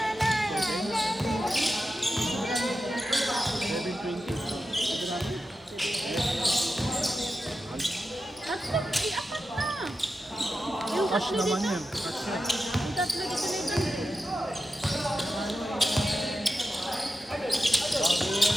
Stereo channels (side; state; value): both; normal; correlation 0.91